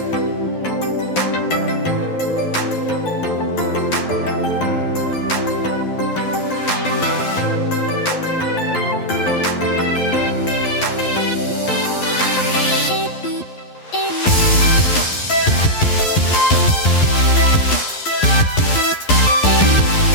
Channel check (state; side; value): late; right; 11 ms